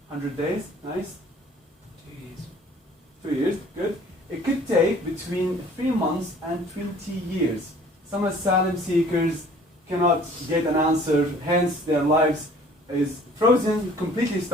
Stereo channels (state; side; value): normal; both; correlation 0.52